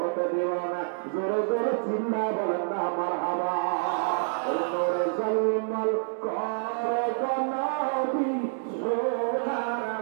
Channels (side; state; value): left; silent; 60 dB below the other